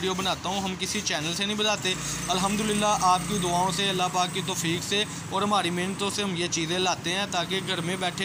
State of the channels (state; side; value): identical; both; correlation 1.00